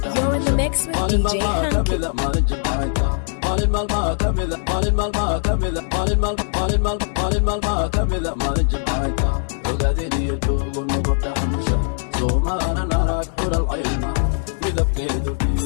You're in the mix with مال المال DJ ما Hanky. كمذا مال الجبعيتا مال المال ما كمذا مال المال ما كمذا مال المال مال المال مال المال ما كمذا مال الجبعيتا وقاديني يجوغ ونبطا حمشا سوما انا نراك حور العين مذبكيدو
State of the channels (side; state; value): right; silent; digital silence